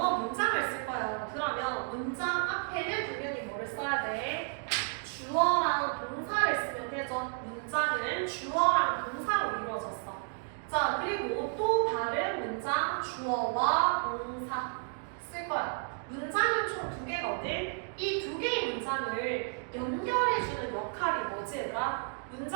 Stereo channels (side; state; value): left; silent; 56 dB below the other